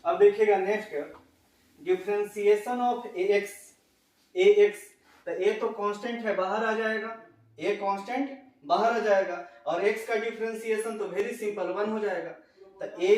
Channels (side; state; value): both; identical; correlation 1.00